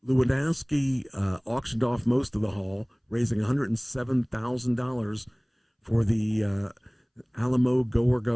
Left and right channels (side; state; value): both; identical; correlation 1.00